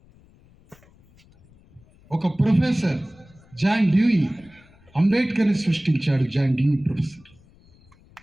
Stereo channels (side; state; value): left; noise; rumble, 28 dB below the sound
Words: ఒక ప్రొఫెసర్ జాన్ డ్యూయి అంబేద్కర్ని సృష్టించాడు. John Dewey professor.